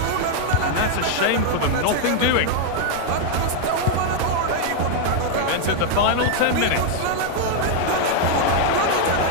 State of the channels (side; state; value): both; different; correlation 0.00